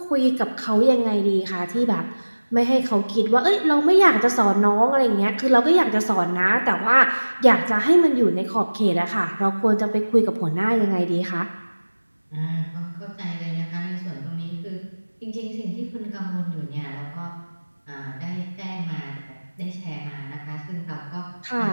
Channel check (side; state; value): both; inverted; correlation -1.00